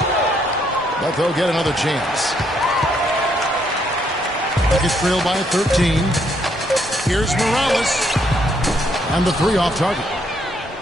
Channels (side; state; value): both; normal; correlation 0.72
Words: But they'll get another chance. Rockets trail by 13. Here's Morales. And the 3 off target.